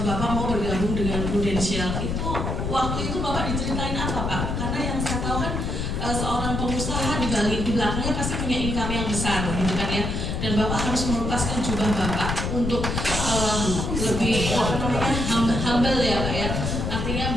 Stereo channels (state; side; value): noise; left; rumble, 2 dB below the sound